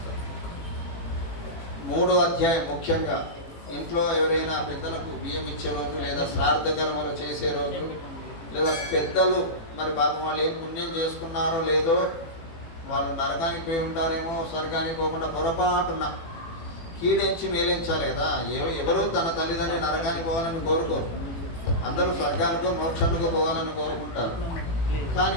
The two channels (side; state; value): right; late; 18 ms